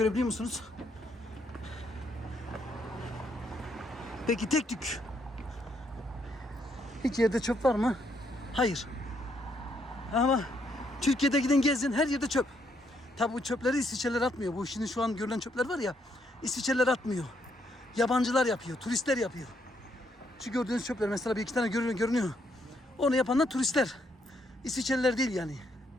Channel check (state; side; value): normal; both; correlation 0.74